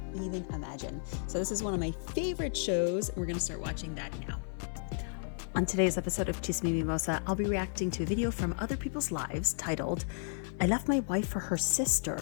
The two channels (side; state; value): right; silent; 56 dB below the other